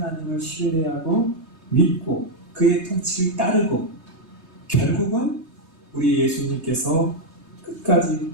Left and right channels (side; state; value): left; late; 3.2 ms